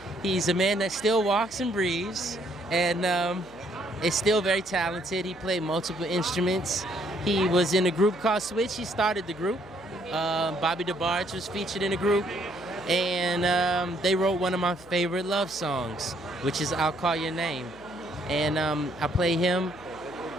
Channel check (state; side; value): noise; left; hum, 23 dB below the sound